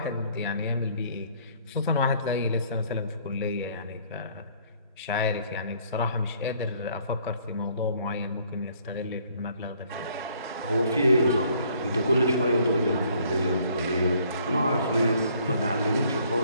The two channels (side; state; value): both; inverted; correlation -0.62